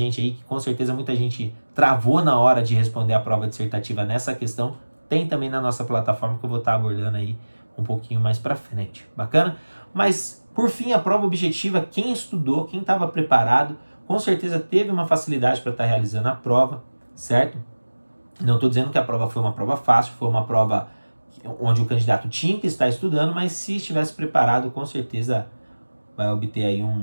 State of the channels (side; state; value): both; inverted; correlation -1.00